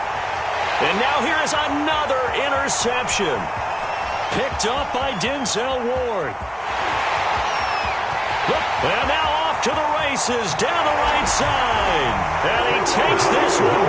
now here is another interception. Picked up by Denzel Ward. And now off to the races down the right side. And he takes this one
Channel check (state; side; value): identical; both; correlation 1.00